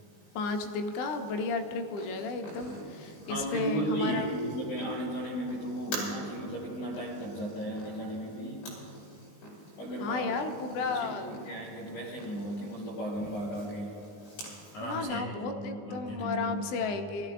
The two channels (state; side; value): late; right; 19 ms